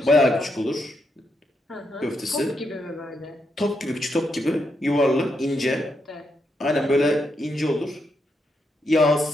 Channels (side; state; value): both; normal; correlation 0.81